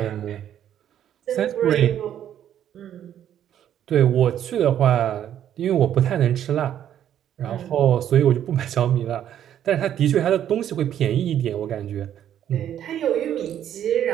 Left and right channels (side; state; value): left; quieter; 10.4 dB